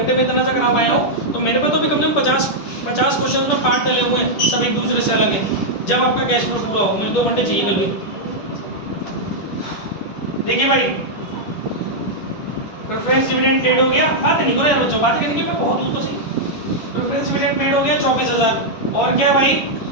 में इतना सा करा पाया हूँ, तो मेरे पे तो भी कम से कम 50 क्वेश्चन में पार्ट डले हुए हैं, सब एक दूसरे से अलग है, जब आपका कैश फ्लो पूरा हो, मुझे 2 घंटे चाहिए कल भी। देखिए भाई, प्रेफरेंस डिविडेंड पेड हो गया, बात नहीं करो यार बच्चों, बात करने की मैं बहुत हूँ तो सही। प्रेफरेंस डिविडेंड पेड हो गया 24,000, और क्या भाई,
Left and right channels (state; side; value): late; right; 10 ms